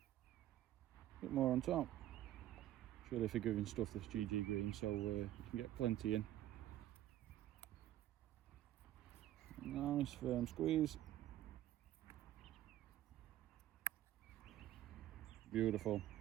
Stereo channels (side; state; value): left; quieter; 13.3 dB